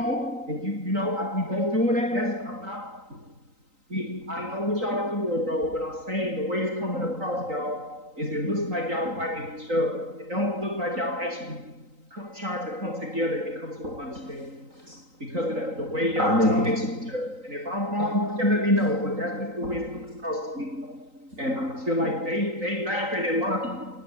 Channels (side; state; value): left; late; 3.9 ms